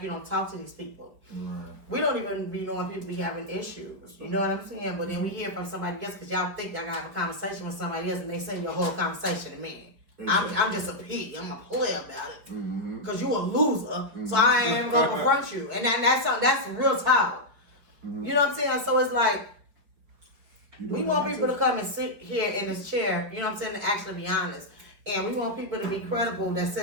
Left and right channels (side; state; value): left; late; 5.0 ms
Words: you don't talk to these people. Right. We don't even be knowing people be having issues. You know what I'm saying? But then we hear from somebody else because y'all think y'all gotta have a conversation with somebody else, and they send your whole conversation to me. I'm just a pig. I'm a player about it. Mm-hmm. Because you a loser, so I ain't even gonna confront you. And that's real talk. Mm-hmm. You know what I'm saying? So it's like, we doing want that people too. to come and sit here in this chair, you know what I'm saying, and actually be honest. And we want people to be credible that